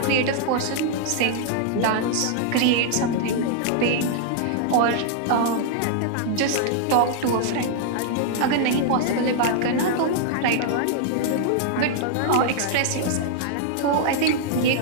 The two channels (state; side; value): different; both; correlation -0.01